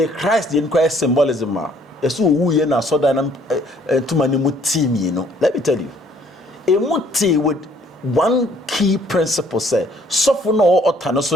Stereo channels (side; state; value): both; normal; correlation 0.61